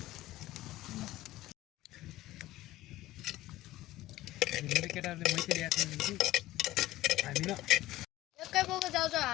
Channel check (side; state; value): right; quieter; 16.3 dB